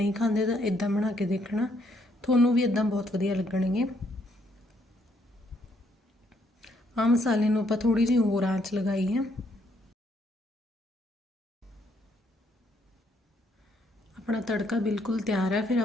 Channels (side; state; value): both; normal; correlation 0.71